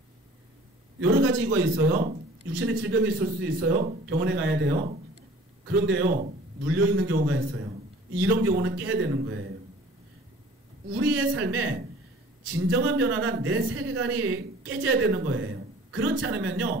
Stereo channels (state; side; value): normal; both; correlation 0.48